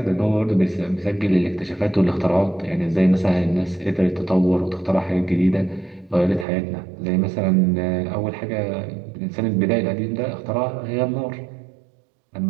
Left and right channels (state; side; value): drops out; left; at 6.5 s